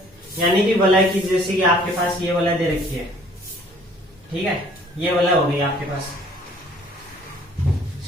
यानी कि वलय की, जैसे कि आपके पास ये वलय दे रखी है, ठीक है, ये वलय हो गई आपके पास,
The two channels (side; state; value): both; normal; correlation 0.56